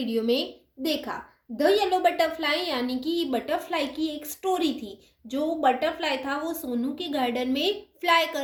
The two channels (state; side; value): identical; both; correlation 1.00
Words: में देखा. The yellow butterfly यानी कि butterfly की एक स्टोरी थी. जो बटरफ्लाई था वो सोनू के गार्डन में फ्लाई